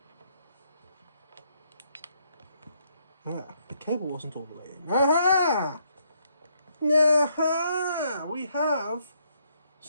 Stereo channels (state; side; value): inverted; both; correlation -0.72